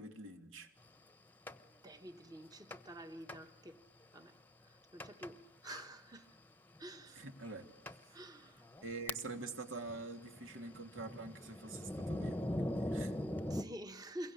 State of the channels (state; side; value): normal; both; correlation 0.66